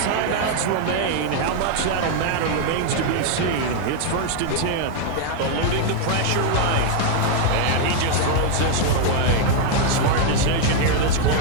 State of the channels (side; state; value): both; different; correlation 0.00